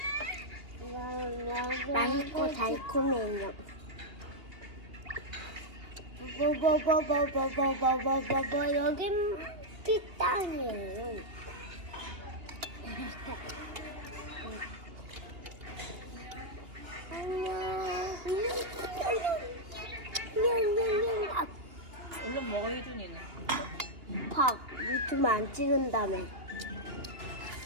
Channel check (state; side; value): late; left; 2.8 ms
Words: 맛있고 달콤해요. 여긴 피땅이에요. 안녕. 얼른 먹어, 혜준이는. 팍 유튜브 안 찍은다며.